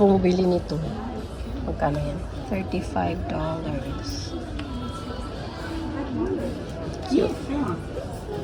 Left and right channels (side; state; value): both; identical; correlation 1.00